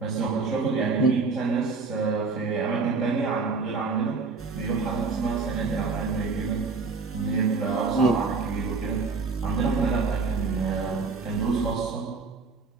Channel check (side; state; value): left; quieter; 4.4 dB